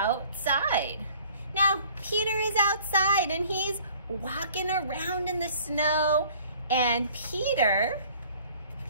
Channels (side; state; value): both; inverted; correlation -0.53